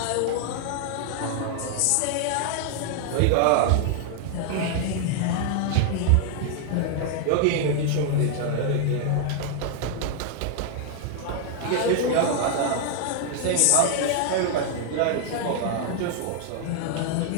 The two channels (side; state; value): both; different; correlation 0.00